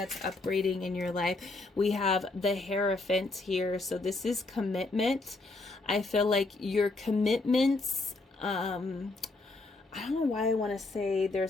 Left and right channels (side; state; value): right; quieter; 3.2 dB